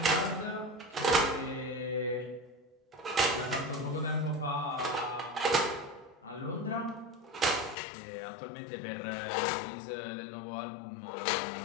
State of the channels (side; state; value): right; drops out; at 7.8 s